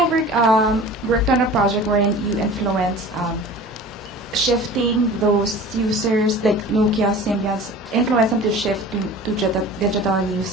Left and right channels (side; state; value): both; normal; correlation 0.40